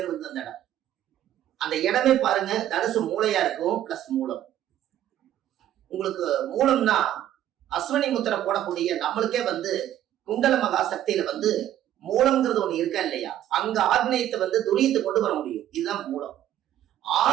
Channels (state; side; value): quieter; left; 11.9 dB